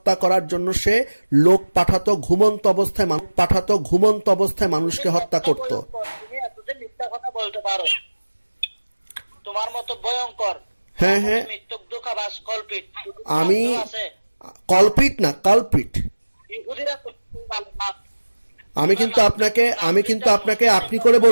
করার জন্য সে লোক পাঠাতো, ঘুমন্ত অবস্থায় মানুষকে হত্যা করত। তোমার মতো ভয়ঙ্কর, হ্যাঁ, আমি কলপিট না, কালপিট। আমি কিন্তু আপনাকে আপনি করে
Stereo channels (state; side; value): inverted; both; correlation -1.00